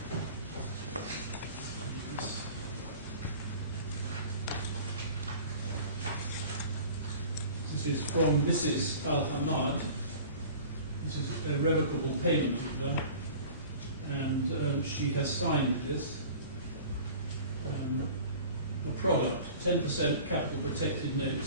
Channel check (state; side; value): inverted; both; correlation -0.42